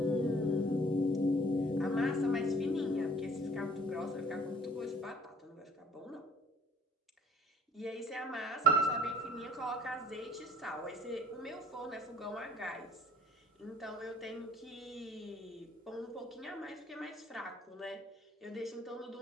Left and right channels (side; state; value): both; normal; correlation 0.57